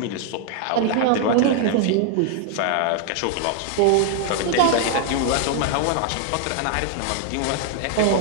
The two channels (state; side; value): different; both; correlation 0.00